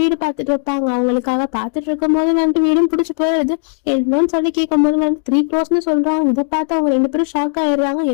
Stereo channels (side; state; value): right; silent; digital silence